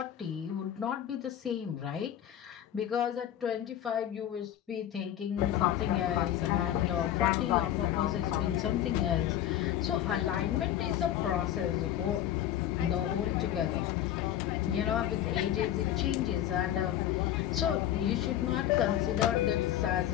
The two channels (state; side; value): quieter; right; 11.6 dB